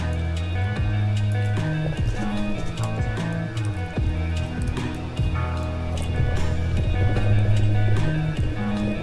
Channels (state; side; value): identical; both; correlation 1.00